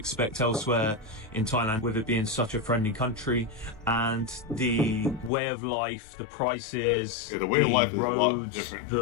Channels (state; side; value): drops out; right; at 5.3 s